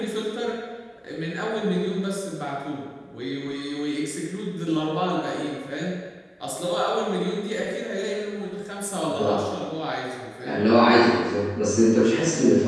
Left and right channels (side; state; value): both; identical; correlation 1.00